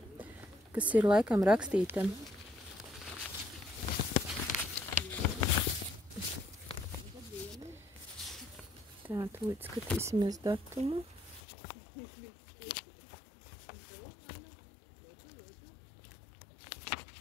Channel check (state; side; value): drops out; right; at 11.4 s